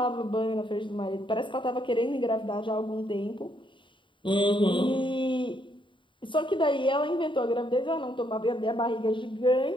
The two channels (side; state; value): right; late; 0.24 ms